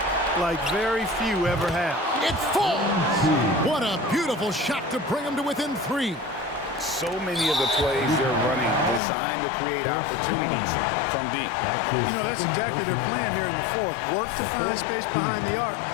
like very few ever have. It falls! What a beautiful shot to bring him to within 3. So many of the plays they're running designed to create opportunities from deep. You know, that's exactly their plan here in the 4th. Work to find space behind the arc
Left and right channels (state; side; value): drops out; right; at 9.0 s